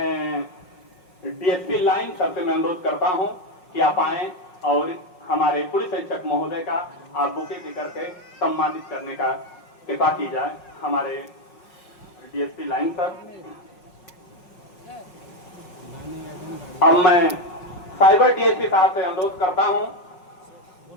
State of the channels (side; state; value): right; late; 5.5 ms